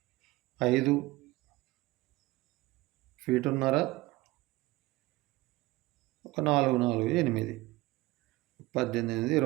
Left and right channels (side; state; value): left; quieter; 20.1 dB